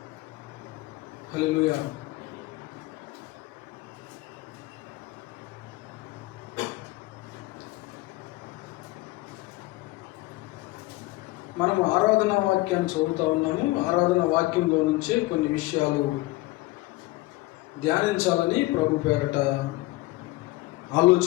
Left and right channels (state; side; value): quieter; right; 19.9 dB